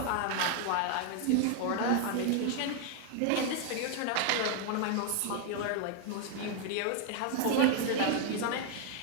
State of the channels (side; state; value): both; different; correlation 0.00